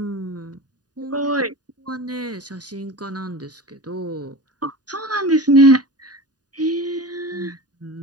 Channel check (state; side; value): late; left; 0.68 ms